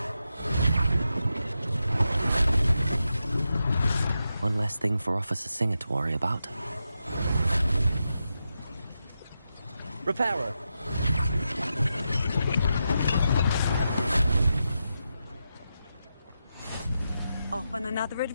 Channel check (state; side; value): inverted; both; correlation -0.88